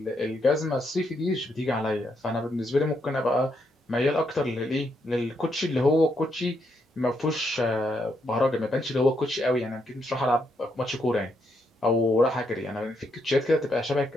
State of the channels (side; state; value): both; normal; correlation 0.78